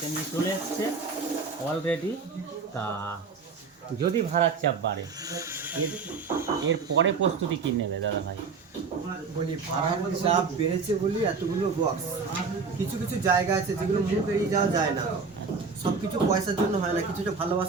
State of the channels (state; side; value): quieter; left; 4.9 dB